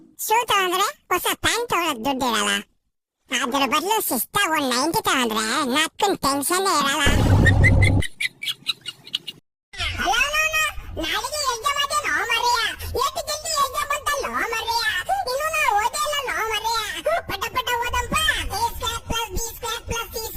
ಶೂ ತಗೊಂಡ್ರೆ ಹೊಸ ಪ್ಯಾಂಟ್ ತಗೊಳಕ್ ದುಡ್ಡಿರಲ್ಲ. ಅದ್ರ ಬದಲು ಶಿಸ್ತಾಗ ಒಂದ್ 90 ತಗೊಂಡ್ರೆ ನಕ್ಕನ್ ಟೆನ್ಷನ್ ಇರಲ್ಲ. ನಾಳೆಗೆ ಎಕ್ಸಾಮ್ ಅದೇನೋ ಮರೆಯ, ಎಷ್ಟು ಜಲ್ದಿ ಎಕ್ಸಾಮ್ ಬಂತಲ್ಲೋ ಮರೆಯ, ಇನ್ನು ನಾ ಓದೇ ಇಲ್ಲ ನೋ ಮರೆಯ. ಪಟ ಪಟ ಓದಂಪ, a² + b² +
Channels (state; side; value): identical; both; correlation 1.00